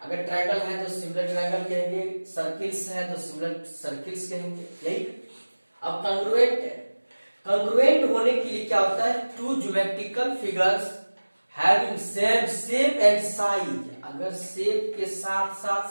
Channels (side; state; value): both; inverted; correlation -1.00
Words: ट्रायंगल है तो सिमिलर ट्रायंगल कहेंगे, सर्किल्स है तो सिमिलर सर्किल्स कहेंगे। यही। अब कॉन्ग्रुएंट है। कॉन्ग्रुएंट होने के लिए क्या होता है? Two geometrical figures having same shape and size. अगर शेप के साथ साथ